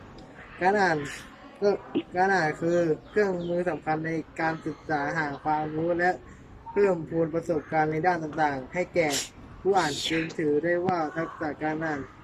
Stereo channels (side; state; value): both; identical; correlation 1.00